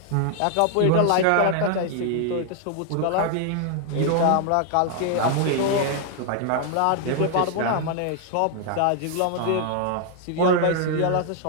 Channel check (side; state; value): both; different; correlation 0.00